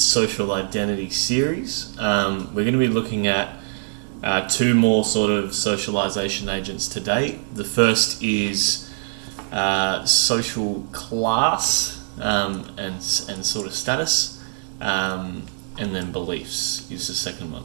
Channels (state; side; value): silent; left; digital silence